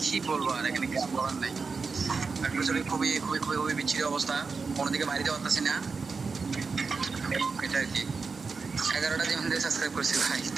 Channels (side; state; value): left; quieter; 4.8 dB